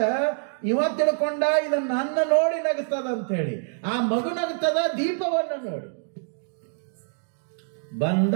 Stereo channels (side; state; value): left; silent; digital silence